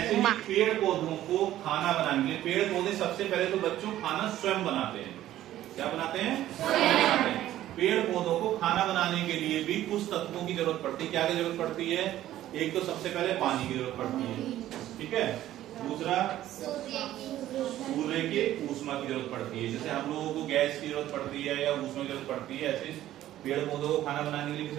ही पेड़ पौधों को खाना बनाने के लिए, पेड़ पौधे सबसे पहले तो बच्चों खाना स्वयं बनाते हैं। क्या बनाते हैं? स्वयं बनाते हैं। पेड़ पौधों को खाना बनाने के लिए भी कुछ तत्वों की जरूरत पड़ती है। क्या की जरूरत पड़ती है? एक तो सबसे पहले पानी की जरूरत पड़ती है, ठीक है। दूसरा सूर्य की ऊष्मा की जरूरत पड़ती है। जैसे हम लोगों को गैस की जरूरत पड़ती है या ऊष्मा की जरूरत पड़ती है, ऐसे पेड़ पौधों को खाना बनाने के लिए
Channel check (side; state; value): left; quieter; 13.4 dB